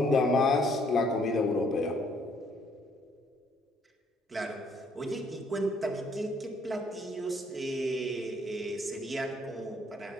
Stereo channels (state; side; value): normal; both; correlation 0.66